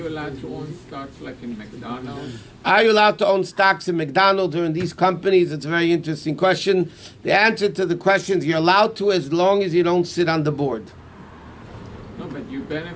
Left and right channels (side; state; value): both; identical; correlation 1.00